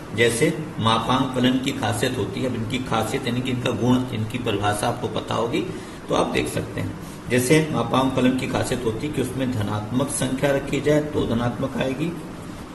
जैसे मापांक फलन की खासियत होती है। अब इनकी खासियत यानी कि इनका गुण, इनकी परिभाषा आपको पता होगी तो आप देख सकते हैं। जैसे मापांक फलन की खासियत होती है कि उसमें धनात्मक संख्या रखी जाए तो धनात्मक आएगी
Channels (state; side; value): identical; both; correlation 1.00